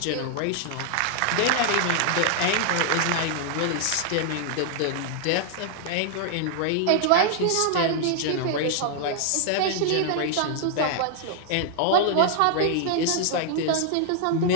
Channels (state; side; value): different; both; correlation -0.01